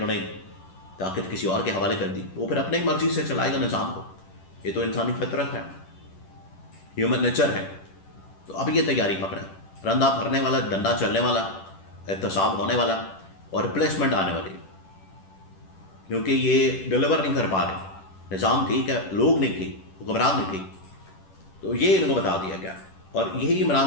نے طاقت کسی اور کے حوالے کر دی، وہ پھر اپنی مرضی سے چلائے گا نظام کو، یہ تو انسانی فطرت ہے، ہیومن نیچر ہے۔ تو اب یہ تیاری پکڑے، رندہ بھرنے والا، ڈنڈا چلنے والا، احتساب ہونے والا، اور ریپلیسمنٹ آنے والی، کیونکہ یہ ڈیلیور نہیں کر پا رہے، نظام ٹھیک ہے، لوگ نہیں ٹھیک، حکمران نہیں ٹھیک، تو یہ ان کو بتا دیا گیا، اور یہی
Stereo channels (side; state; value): right; late; 10 ms